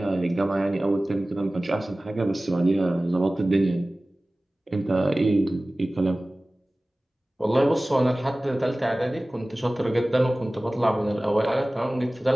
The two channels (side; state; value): both; normal; correlation 0.98